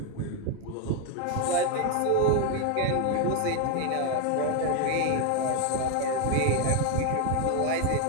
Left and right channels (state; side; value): different; both; correlation 0.01